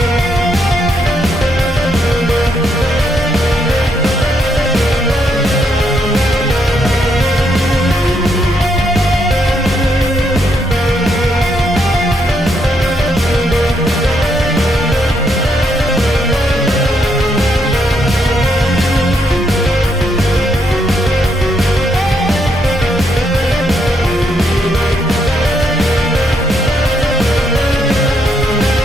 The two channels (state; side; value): normal; both; correlation 0.76